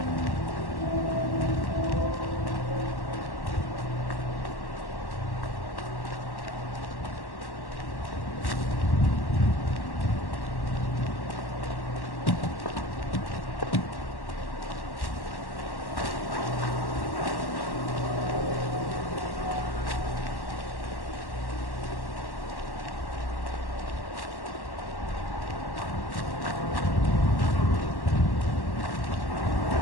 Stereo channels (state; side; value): late; right; 1.1 ms